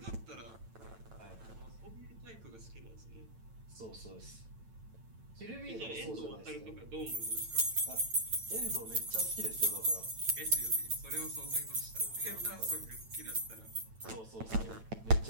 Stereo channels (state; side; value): late; left; 9.0 ms